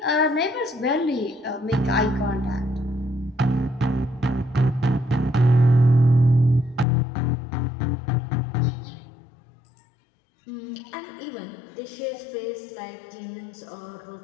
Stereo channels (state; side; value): drops out; right; at 6.9 s